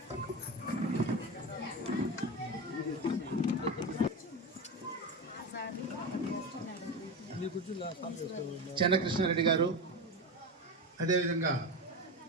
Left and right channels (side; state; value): both; normal; correlation 0.21